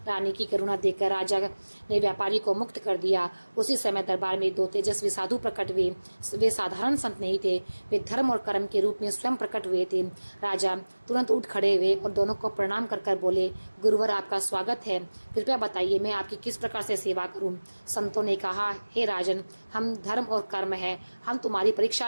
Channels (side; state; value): both; inverted; correlation -1.00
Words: रानी की करुणा देखकर राजा ने व्यापारी को मुक्त कर दिया। उसी समय दरबार में 2 तेजस्वी साधु प्रकट हुए। वे साधारण संत नहीं थे, वे धर्म और कर्म के रूप में स्वयं प्रकट हुए थे। राजा तुरंत उठ खड़े हुए और दोनों को प्रणाम कर बोले, गुरुवर, आपका स्वागत है, कृपया बताइए मैं आपकी किस प्रकार से सेवा करूं? संतों ने कहा, हे राजन, हम धर्म और कर्म है, हम तुम्हारी परीक्षा